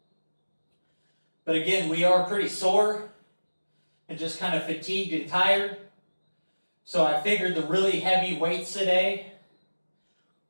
But again, we are pretty sore and just kind of fatigued and tired. So I figured the really heavy weights today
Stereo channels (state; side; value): inverted; both; correlation -1.00